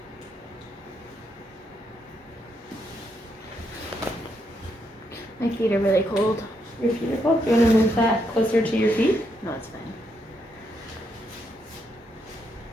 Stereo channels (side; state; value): both; normal; correlation 0.78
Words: My feet are really cold. Your feet are cold. Do you want to move that closer to your feet? No, it's